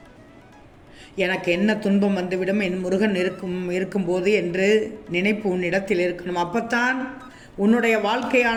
எனக்கு என்ன துன்பம் வந்துவிடும், என் முருகன் இருக்கும்போது என்று நினைப்பு உன்னிடத்தில் இருக்கணும். அப்பத்தான் உன்னுடைய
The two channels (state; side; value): identical; both; correlation 1.00